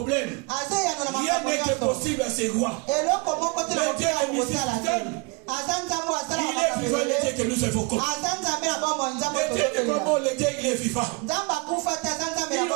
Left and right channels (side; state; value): left; quieter; 29.6 dB